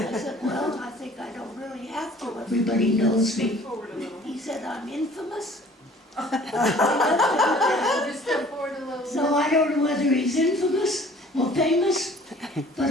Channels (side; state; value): both; normal; correlation 0.51